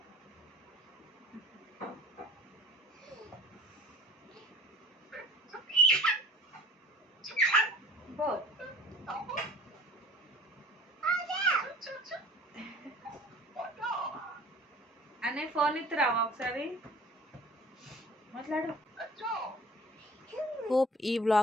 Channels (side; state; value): both; normal; correlation 0.46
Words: బోత్. అనే ఫోన్ ఇస్తురావా ఒకసారి మాట్లాడు. హోప్ ఈ